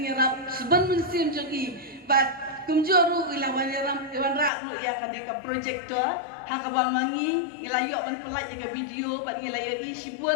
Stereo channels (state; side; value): drops out; right; at 4.5 s